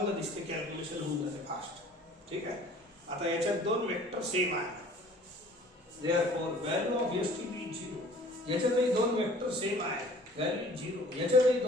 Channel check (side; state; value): both; normal; correlation 0.50